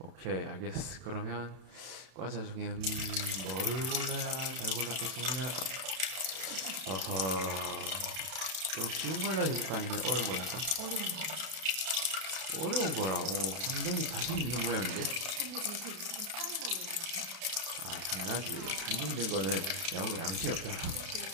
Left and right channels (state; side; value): late; left; 32 ms